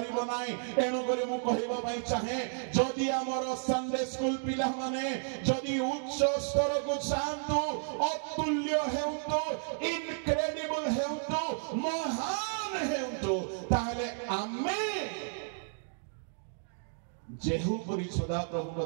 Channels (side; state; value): left; silent; digital silence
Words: नाही एनु करे मु कहिबा पई चाहे जदि हमर संडे स्कूल पिला माने जदि उच्च स्तर को चाहंतु अतुल्य हेउतो इनक्रेडिबल हेउतो महान हेउतो ताहले आमे जेहू परि सदा प्रभु का